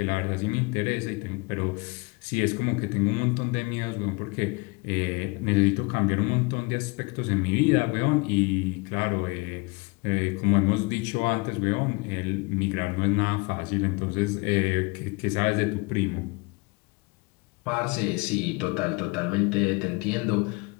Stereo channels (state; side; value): quieter; right; 27.6 dB